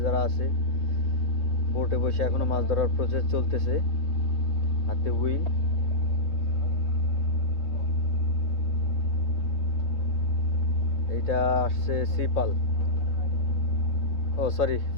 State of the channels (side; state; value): right; late; 3.3 ms